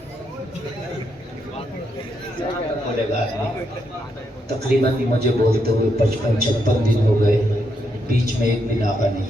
बोलेगा तकरीबन मुझे बोलते हुए 55-56 दिन हो गए, बीच में एक दिन आका नहीं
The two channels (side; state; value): both; normal; correlation 0.79